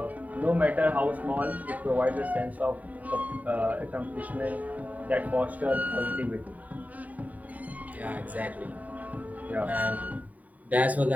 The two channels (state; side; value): late; left; 0.072 ms